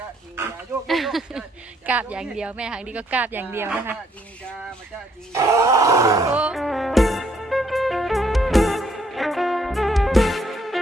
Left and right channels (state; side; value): normal; both; correlation 0.69